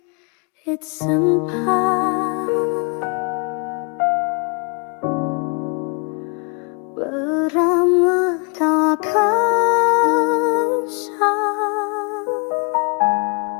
it's sempat beramah tak kasar.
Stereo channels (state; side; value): quieter; right; 35.2 dB